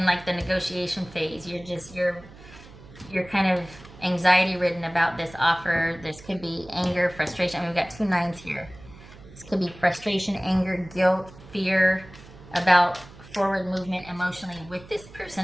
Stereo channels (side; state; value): right; noise; hum, 20 dB below the sound